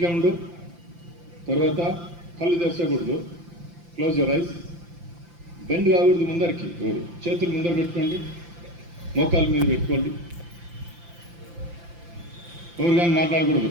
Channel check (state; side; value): late; left; 5.8 ms